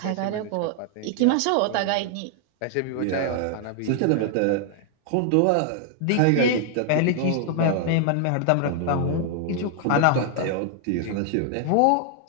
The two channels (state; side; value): different; both; correlation 0.00